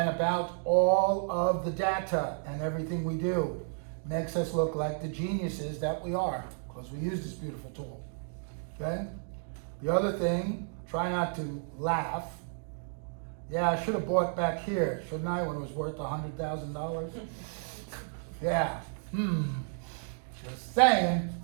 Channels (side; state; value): left; silent; 56 dB below the other